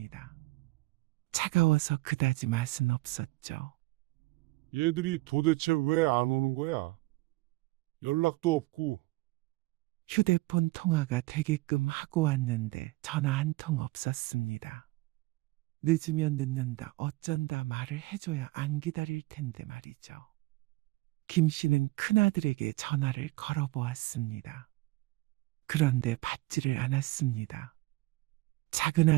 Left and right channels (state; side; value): quieter; left; 21.0 dB